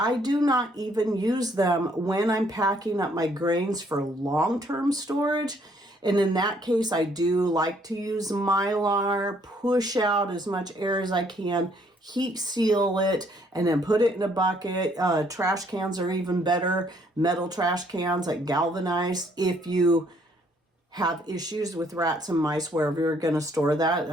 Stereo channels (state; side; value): normal; both; correlation 0.66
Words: do not even use them when I'm packing up my grains for long-term storage. And in that case, I do like to use Mylar, push out as much air as I can, heat seal it, and then put it in a bucket. Trash cans are even better. Metal trash cans, like galvanized. If you have issues with rats and mice wherever you're going to store that,